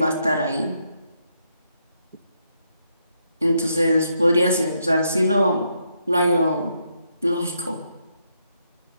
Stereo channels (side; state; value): both; inverted; correlation -0.78